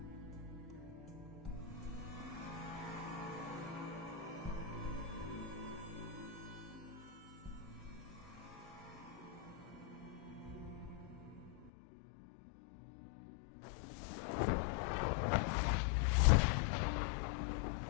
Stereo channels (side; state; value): right; drops out; at 11.7 s